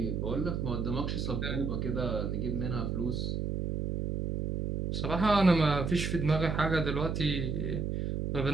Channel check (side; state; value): right; noise; hum, 1 dB below the sound